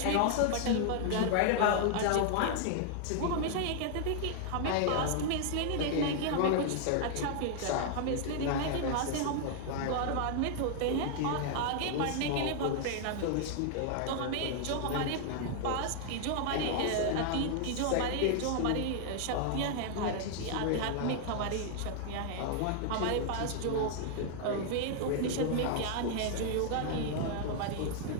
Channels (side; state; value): both; different; correlation 0.00